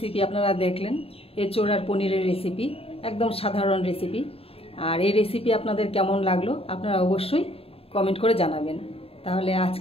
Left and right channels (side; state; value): right; late; 0.28 ms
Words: আপনারা দেখলেন, এঁচোড় আর পনিরের রেসিপি, একদম সাধারণ রেসিপি। আর এই রেসিপি আপনাদের কেমন লাগলো আপনারা অবশ্যই কমেন্ট করে জানাবেন। তাহলে